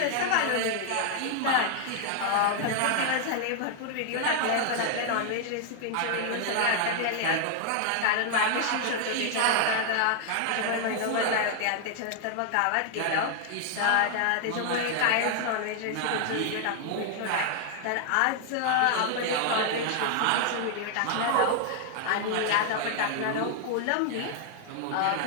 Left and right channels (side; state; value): both; different; correlation 0.00